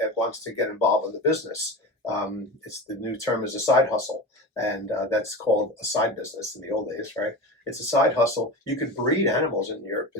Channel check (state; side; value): normal; both; correlation 0.28